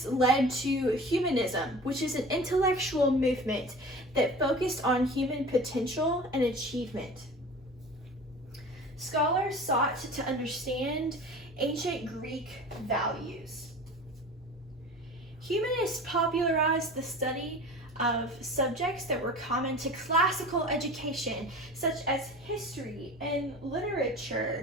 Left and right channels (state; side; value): normal; both; correlation 0.38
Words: led to Humanism, which is an intellectual movement that focused on human potential and achievement. Scholars sought to understand ancient Greek values. Humanists popularized the study of subjects that were common to classical education, such as history and